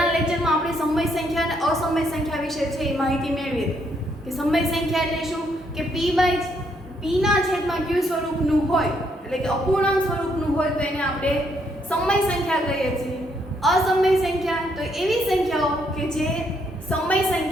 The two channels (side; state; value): both; normal; correlation 0.73